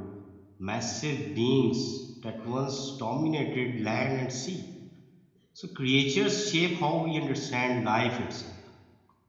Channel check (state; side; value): identical; both; correlation 1.00